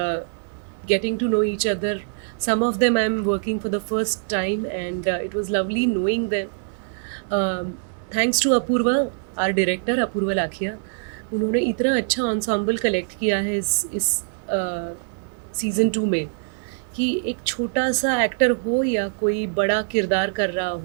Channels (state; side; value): silent; left; 60 dB below the other